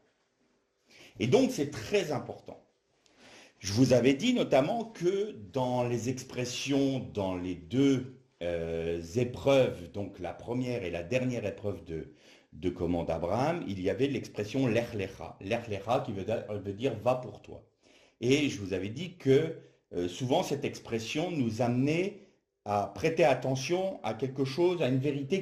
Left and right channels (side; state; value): both; identical; correlation 1.00